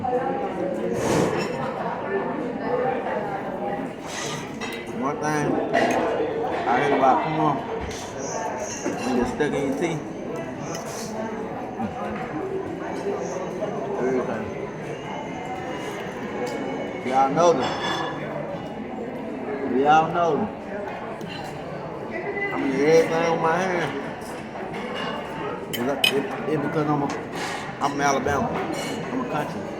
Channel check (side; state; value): both; identical; correlation 1.00